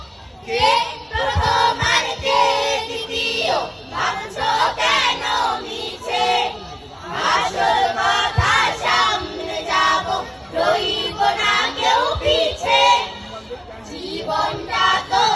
কে প্রথমার কে দ্বিতীয় ভাবছো কেন নিচে, আসল কথা সামনে যাব, রইব না কেউ পিছে। জীবনটা তো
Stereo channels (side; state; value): both; identical; correlation 1.00